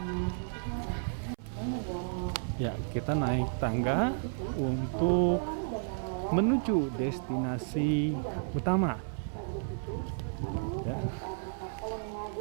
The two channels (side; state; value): left; silent; 56 dB below the other